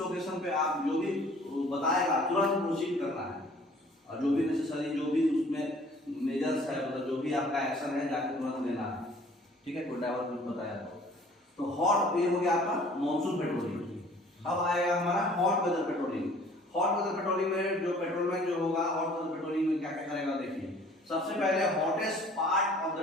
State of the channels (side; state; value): both; normal; correlation 0.53